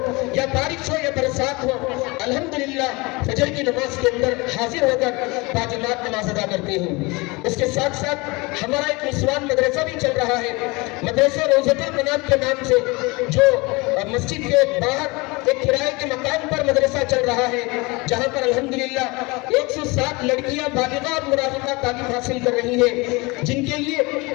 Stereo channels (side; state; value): right; quieter; 25.3 dB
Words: या बारिश हो या बरसात हो, अल्हम्दुलिल्लाह फजर की नमाज के अंदर हाजिर होकर बाजमात नमाज अदा करते हैं। इसके साथ साथ हमारा एक निस्वान मदरसा भी चल रहा है, मदरसा रोज़तुल मनात के नाम से, जो मस्जिद के बाहर एक किराए के मकान पर मदरसा चल रहा है, जहाँ पर अल्हम्दुलिल्लाह 107 लड़कियां बालिगा और मुराहिका तालीम हासिल कर रही है, जिनके लिए